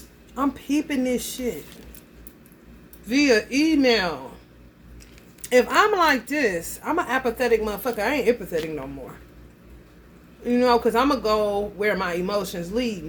I'm peeping this shit via email. If I'm like this, I'm an apathetic motherfucker. I ain't empathetic no more. You know, because I'm going to go where my emotions lead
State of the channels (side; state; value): both; identical; correlation 1.00